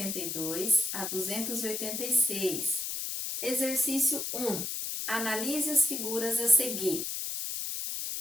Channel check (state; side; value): noise; left; hiss, 3 dB below the sound